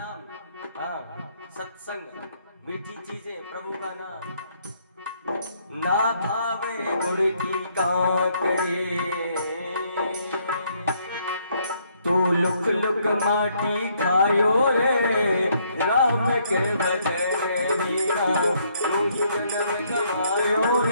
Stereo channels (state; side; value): inverted; both; correlation -0.69